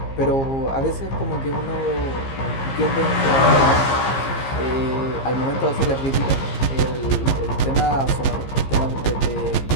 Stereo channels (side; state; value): right; late; 15 ms